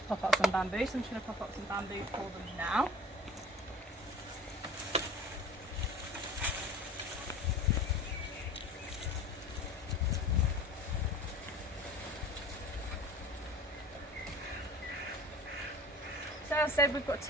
pop up some bamboo. So I'm just going to pop up some bamboo for them now. So as I said, we've got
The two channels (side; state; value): both; normal; correlation 0.41